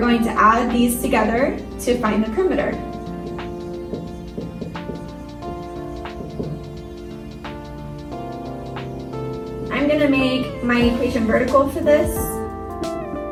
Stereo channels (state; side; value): identical; both; correlation 1.00